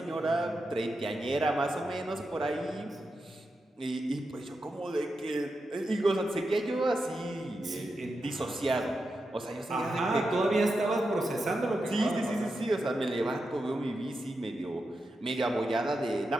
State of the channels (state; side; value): normal; both; correlation 0.88